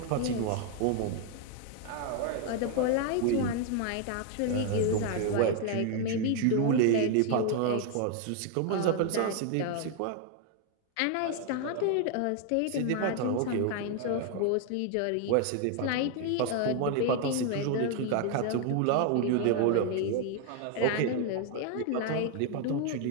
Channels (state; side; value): different; both; correlation 0.00